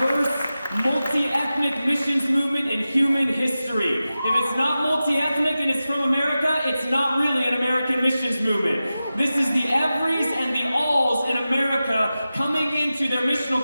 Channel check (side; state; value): both; inverted; correlation -0.94